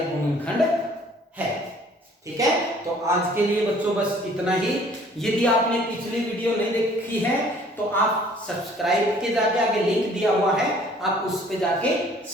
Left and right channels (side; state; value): both; normal; correlation 0.55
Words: गुणनखंड है। ठीक है, तो आज के लिए बच्चों बस इतना ही। यदि आपने पिछली वीडियो नहीं देखी है तो आप सब्सक्राइब के जाके आगे लिंक दिया हुआ है, आप उस पे जाके